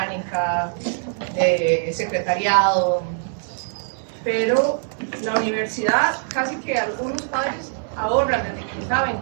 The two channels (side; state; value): left; silent; digital silence